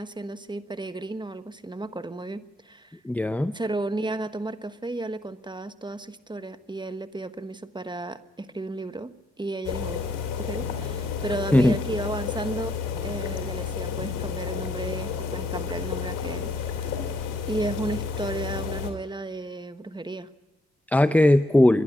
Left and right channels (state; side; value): normal; both; correlation 0.73